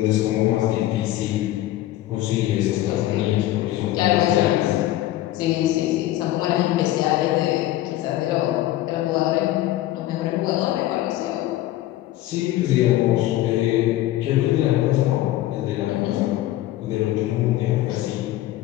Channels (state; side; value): quieter; right; 14.9 dB